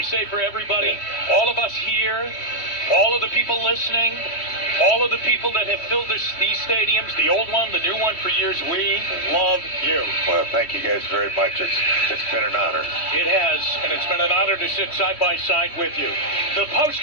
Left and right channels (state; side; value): late; right; 3.1 ms